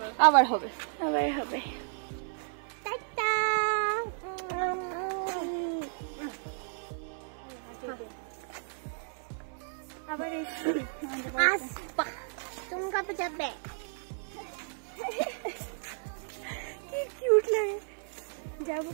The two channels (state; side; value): silent; left; 56 dB below the other